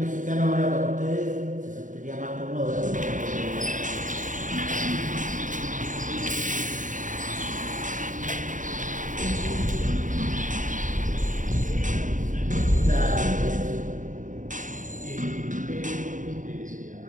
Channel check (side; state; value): left; late; 0.37 ms